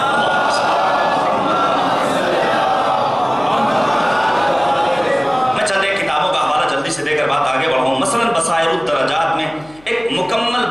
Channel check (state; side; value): noise; left; hum, 28 dB below the sound